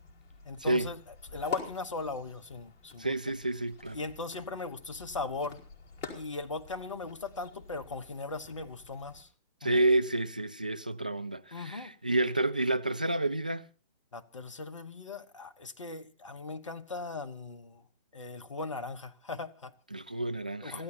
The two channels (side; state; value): both; inverted; correlation -0.64